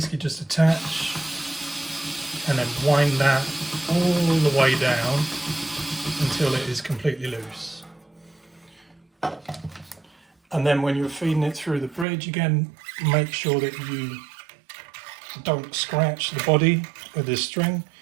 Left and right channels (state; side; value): drops out; left; at 12.1 s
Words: just attach and then wind that all the way down until it is completely loose. And then when you're feeding it through the bridge, again, make sure that you don't scratch the body with this string.